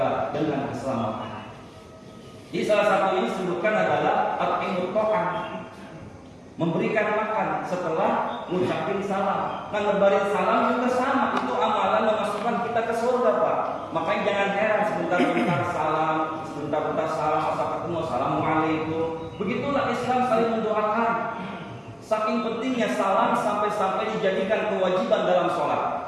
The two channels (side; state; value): both; identical; correlation 1.00